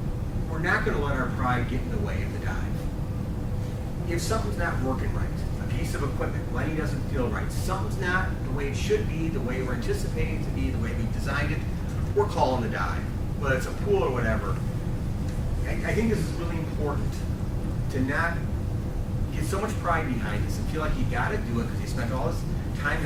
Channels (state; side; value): identical; both; correlation 1.00